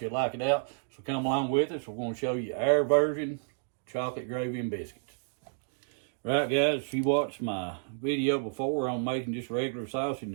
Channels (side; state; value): left; silent; digital silence